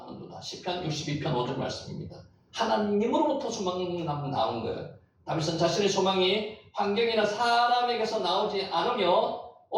시편 62편 5절 말씀입니다. 하나님으로부터 소망이 나온 거예요. 다윗은 자신의 소망이 환경이나 사람에게서 나오지 않으며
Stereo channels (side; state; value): both; identical; correlation 1.00